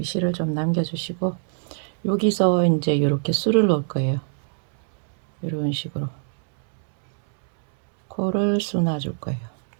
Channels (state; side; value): silent; left; 63 dB below the other